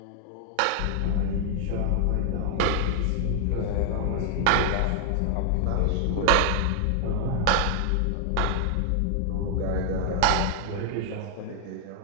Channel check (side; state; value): both; different; correlation 0.00